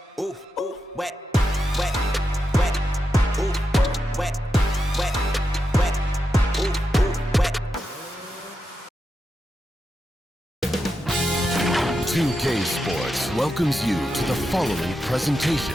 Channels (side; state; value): both; normal; correlation 0.87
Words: Ooh, ooh, wet. Wet. Wet. Ooh, wet. Wet. Wet. Ooh, ooh, wet. 2K Sports welcomes you to the following presentation